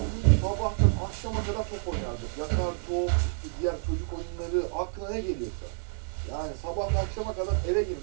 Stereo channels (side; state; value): left; silent; 59 dB below the other